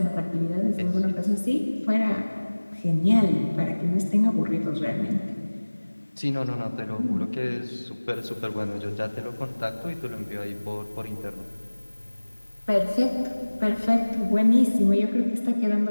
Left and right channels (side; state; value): both; inverted; correlation -1.00